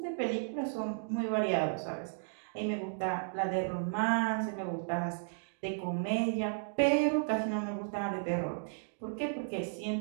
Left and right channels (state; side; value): silent; left; digital silence